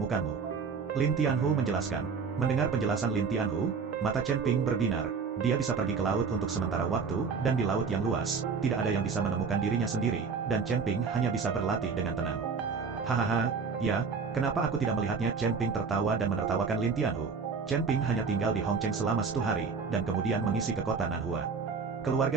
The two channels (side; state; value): left; quieter; 5.3 dB